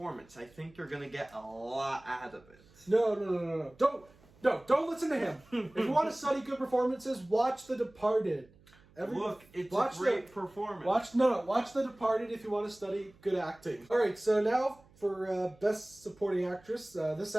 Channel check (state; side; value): noise; right; hum, 28 dB below the sound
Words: I think you're gonna get a lot out of it. No. Don't listen to him. If you want to study good performances, watch The Departed. It's a great performance. Watch The Departed if you want to study good acting. All right, so now for Best Supporting Actress, this